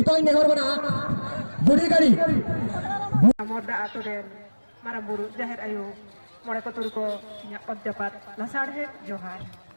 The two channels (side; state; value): both; inverted; correlation -1.00